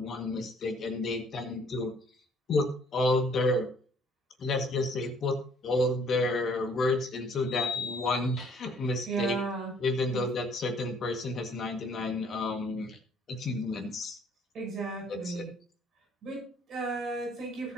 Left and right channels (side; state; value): both; normal; correlation 0.60